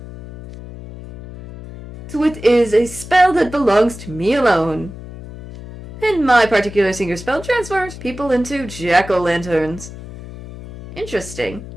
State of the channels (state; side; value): noise; left; hum, 14 dB below the sound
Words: So it is a spell that belongs to me alone. And my particular signature spell transforms people into jack-o'-lanterns. Interesting.